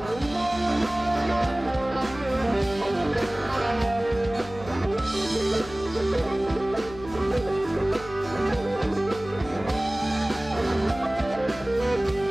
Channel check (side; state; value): left; noise; hum, 16 dB below the sound